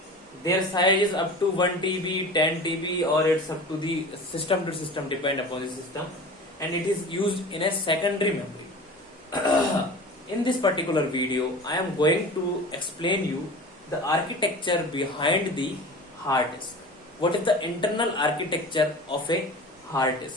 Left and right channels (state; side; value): normal; both; correlation 0.36